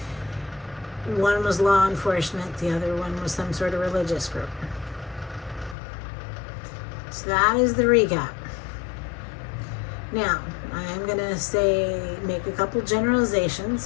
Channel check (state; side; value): drops out; right; at 5.8 s